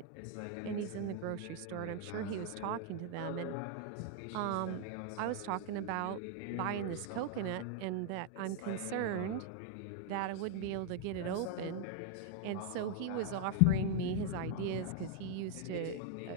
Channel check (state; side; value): different; both; correlation 0.00